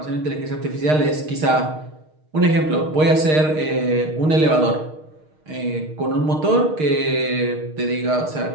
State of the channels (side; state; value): left; late; 6.5 ms